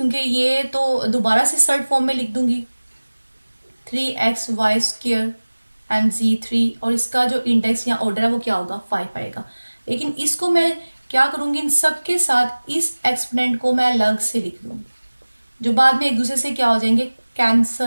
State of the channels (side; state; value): both; inverted; correlation -1.00